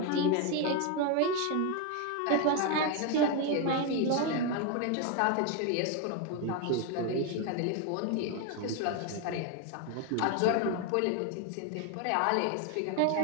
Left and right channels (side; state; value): both; different; correlation 0.01